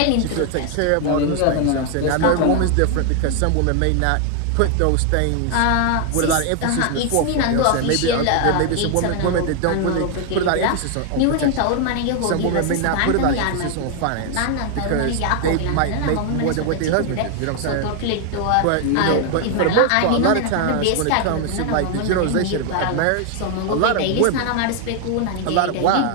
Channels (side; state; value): both; different; correlation 0.00